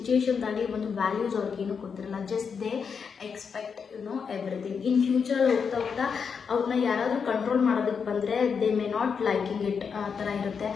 ಒಂದು ವ್ಯಾಲ್ಯೂಸ್ ಅವ್ರಿಗೇನು ಗೊತ್ತಿರಲ್ಲ. Just they expect everything. In ಫ್ಯೂಚರಲ್ಲಿ ಹೋಗ್ತಾ ಅವ್ರನ್ನ ಯಾರಾದರೂ ಕಂಟ್ರೋಲ್ ಮಾಡೋದಕ್ಕೆ ಬಂದರೆ they may not liking it ಆ ಥರ ಇರುತ್ತೆ.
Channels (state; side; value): quieter; right; 6.2 dB